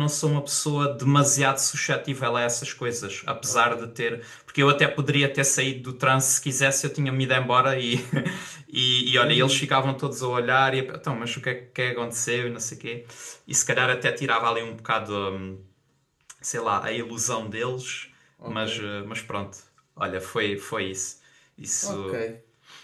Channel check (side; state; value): both; identical; correlation 1.00